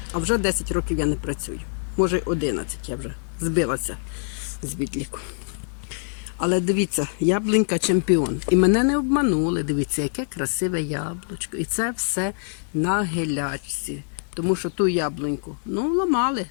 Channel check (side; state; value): right; silent; 62 dB below the other